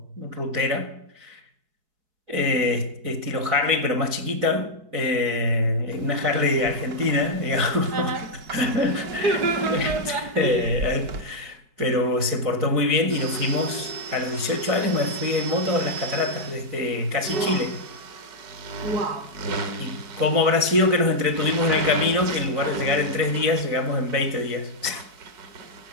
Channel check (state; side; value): late; left; 4.7 ms